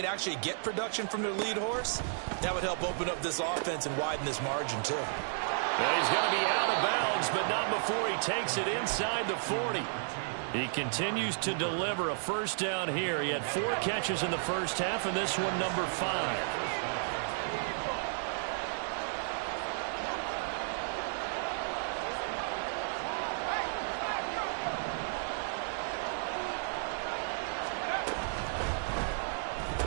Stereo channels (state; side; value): silent; left; digital silence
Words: actually get production from their lead horse, that would help open up this offense and widen this margin, too. Well, he's going to be out of bounds, but not before he takes it inside the 40. He continues to deliver a first down here. He had 4 catches in the first half, and this one number 5.